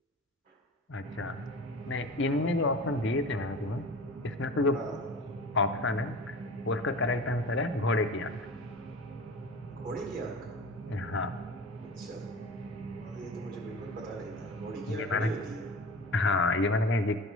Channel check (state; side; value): normal; both; correlation 0.36